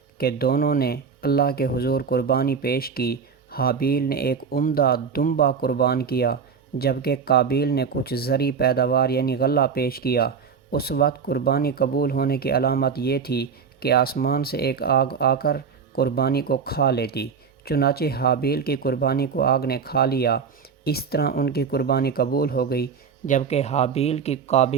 کہ دونوں نے اللہ کے حضور قربانی پیش کی۔ حابیل نے ایک عمدہ دمبا قربان کیا جبکہ قابیل نے کچھ زرعی پیداوار یعنی غلہ پیش کیا۔ اس وقت قربانی قبول ہونے کی علامت یہ تھی کہ آسمان سے ایک آگ آ کر قربانی کو کھا لیتی، چنانچہ حابیل کی قربانی کو آگ نے کھا لیا۔ اس طرح ان کی قربانی قبول ہو گئی، جبکہ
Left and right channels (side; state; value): left; quieter; 6.1 dB